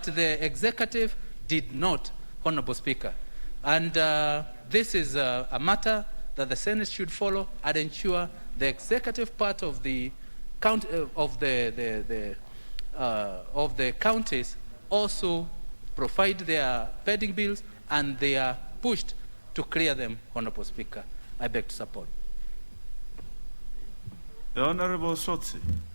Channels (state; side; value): inverted; both; correlation -1.00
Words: the executive did not, Honorable Speaker. And this is a matter that the Senate should follow and ensure the executive part of the counties also provide their pending bills, and they are pushed to clear them, Honorable Speaker. I beg to support. The Honorable Sotsi.